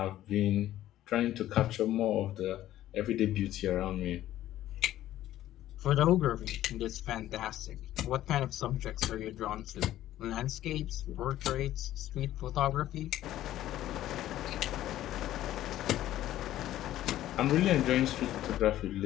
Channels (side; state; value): right; quieter; 13.5 dB